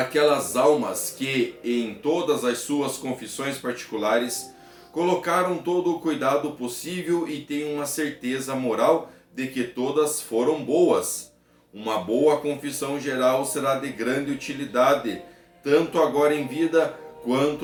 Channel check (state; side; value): identical; both; correlation 1.00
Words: almas que, em todas as suas confissões particulares, colocaram todo o cuidado possível e têm uma certeza moral de que todas foram boas. Uma boa confissão geral será de grande utilidade, tanto agora em vida